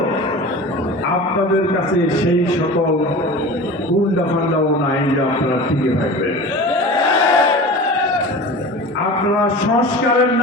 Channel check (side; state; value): both; normal; correlation 0.35